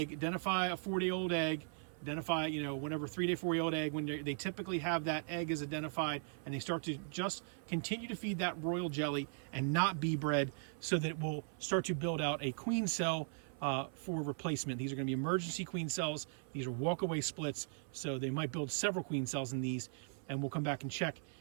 identify a 4-day-old egg, identify, whenever 3-day, 4-day-old egg, when they typically have that egg is identified, and they start to just continue to feed that royal jelly and not bee bread, so that it will start to build out a queen cell for replacement. These are going to be emergency queen cells. These are walk-away splits, so they might build several queen cells in these, and we'll come back and check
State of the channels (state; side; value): silent; left; 52 dB below the other